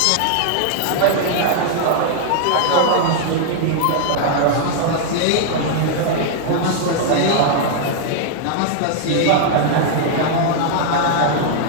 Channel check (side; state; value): both; different; correlation -0.01